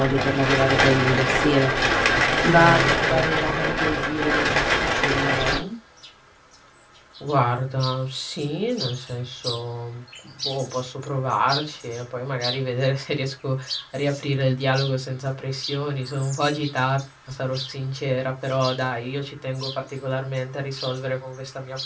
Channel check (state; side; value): identical; both; correlation 1.00